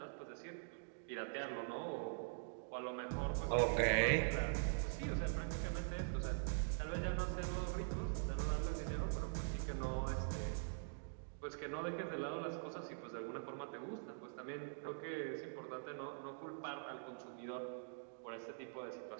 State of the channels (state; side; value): silent; left; digital silence